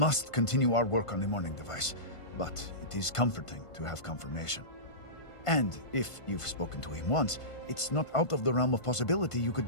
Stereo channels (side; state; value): right; late; 1.5 ms